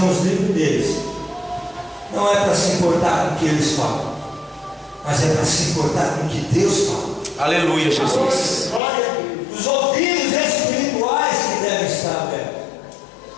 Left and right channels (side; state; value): right; drops out; at 8.8 s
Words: livres deles. Não é para se importar com o que eles falam, mas é para se importar com o que Deus fala. Aleluia, Jesus. Os ouvidos espirituais que devem estar abertos.